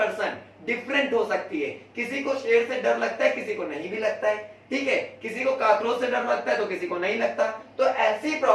डिफरेंट हो सकती है। किसी को शेर से डर लगता है, किसी को नहीं भी लगता है, ठीक है। किसी को काकरोच से डर लगता है तो किसी को नहीं लगता। तो ऐसी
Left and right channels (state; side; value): identical; both; correlation 1.00